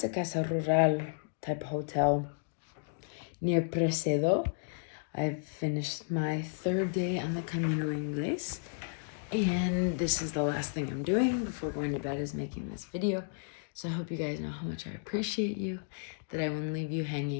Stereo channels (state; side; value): silent; right; digital silence